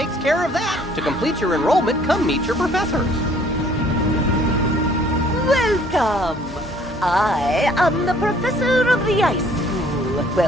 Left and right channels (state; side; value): normal; both; correlation 0.58